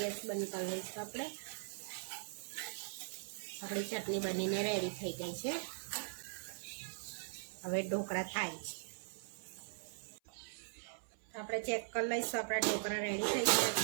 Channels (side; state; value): left; silent; 51 dB below the other